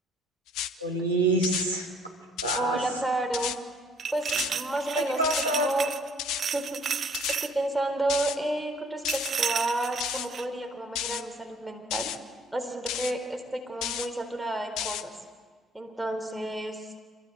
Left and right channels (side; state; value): both; normal; correlation 0.59